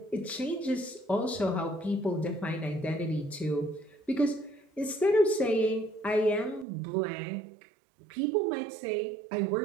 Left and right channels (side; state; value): left; drops out; at 6.7 s